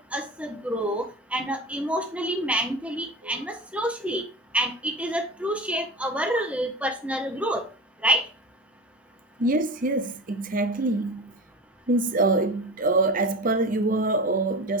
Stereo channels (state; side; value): normal; both; correlation 0.29